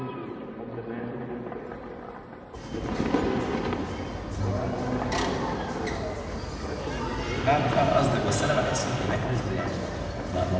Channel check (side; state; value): both; identical; correlation 1.00